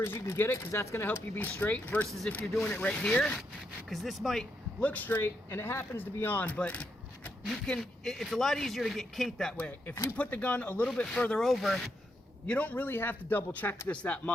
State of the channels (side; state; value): both; normal; correlation 0.80